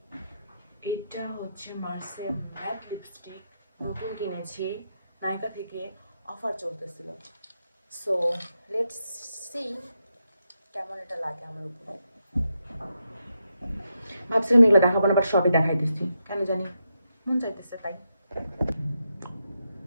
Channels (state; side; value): inverted; both; correlation -0.84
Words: এটা হচ্ছে মার্সেল ম্যাট লিপস্টিক, নতুন কিনেছি, নায়িকা থেকে অফার চলতেছিল। সো লেটস সি কেমন এটা লাগে আমার উপরে। ভাবছিলাম এগুলো দেখাবো না, বাট সবই দেখাই দিচ্ছি, কেন জানি মন চাইতেছে তাই।